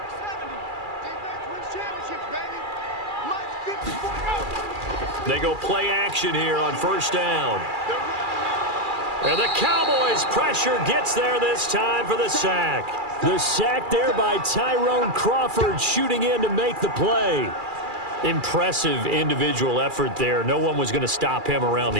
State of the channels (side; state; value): left; late; 2.4 ms